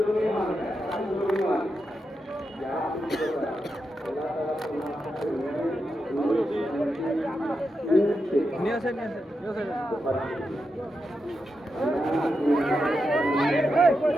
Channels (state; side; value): normal; both; correlation 0.87